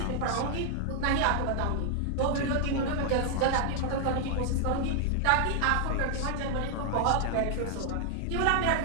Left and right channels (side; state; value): both; different; correlation 0.00